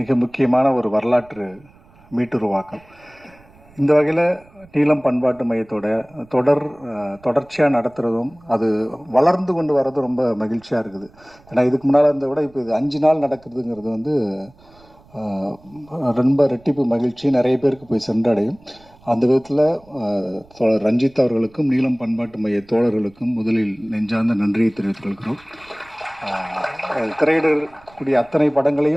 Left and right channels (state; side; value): noise; right; rumble, 27 dB below the sound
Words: முக்கியமான ஒரு வரலாற்று மீட்டுருவாக்கம். இந்த வகையில் நீலம் பண்பாட்டு மையத்தோட தொடர்ச்சியாக நடத்துகிறதும் அது வளர்ந்து கொண்டு வர்றதும் ரொம்ப மகிழ்ச்சியாக இருக்குது. ஏன்னா இதுக்கு முன்னால் இருந்த விட இப்போ இது 5 நாள் நடக்கிறதுங்கிறது வந்து ரொம்ப ரெட்டிப்பு மகிழ்ச்சி நிறைய பேருக்கு போய் சென்றடையும். அந்த விதத்தில் தோழர் ரஞ்சித் அவர்களுக்கும் நீலம் பண்பாட்டு மைய தோழர்களுக்கும் முதலில் நெஞ்சார்ந்த நன்றியை தெரிவித்துக் கொள்கிறோம். திரையிடக்கூடிய அத்தனை